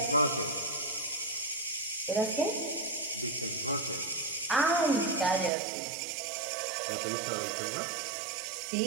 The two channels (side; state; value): left; drops out; at 5.5 s